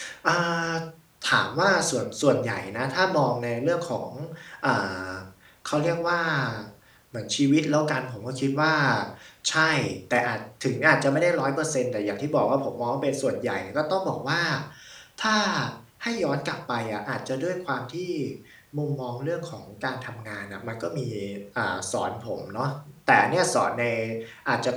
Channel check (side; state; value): both; identical; correlation 1.00